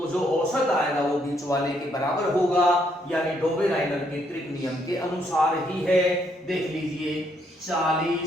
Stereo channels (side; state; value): both; normal; correlation 0.72